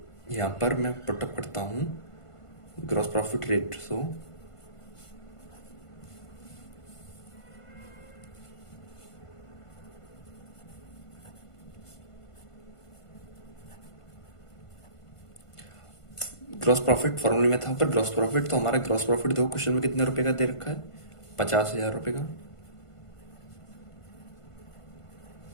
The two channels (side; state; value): right; late; 1.5 ms